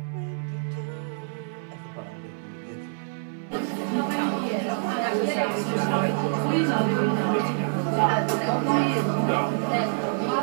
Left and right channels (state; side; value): silent; left; digital silence